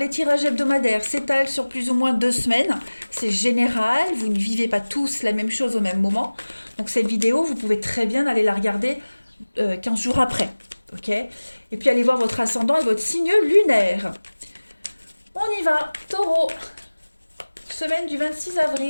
tirages hebdomadaires s'étalent sur plus ou moins 2 semaines. C'est général, vous ne vivez pas tous la même chose au même moment. Donc cette vidéo, vous pouvez très bien aller la regarder 15 jours après. Ok. Et puis allez voir votre ascendant et votre signe lunaire. On y va, taureau. Semaine du 26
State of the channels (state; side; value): inverted; both; correlation -1.00